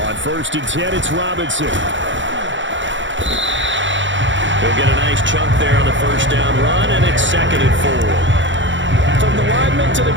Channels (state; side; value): late; left; 0.55 ms